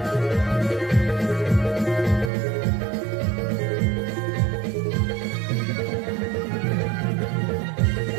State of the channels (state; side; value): drops out; left; at 2.3 s